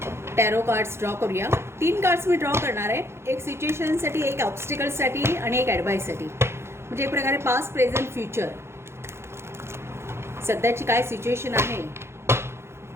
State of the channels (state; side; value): late; left; 0.12 ms